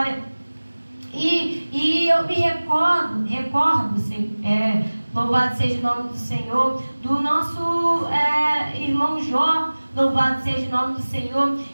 E eu me recordo, louvado seja o nome do Senhor, do nosso irmão Jó. Louvado seja o nome do Senhor,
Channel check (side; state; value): both; inverted; correlation -1.00